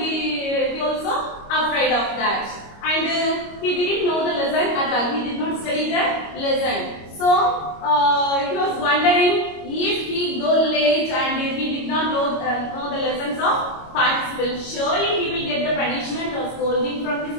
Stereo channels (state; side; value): late; right; 25 ms